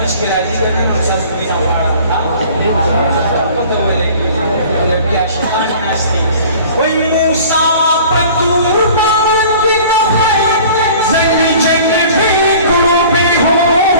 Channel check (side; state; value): both; inverted; correlation -0.46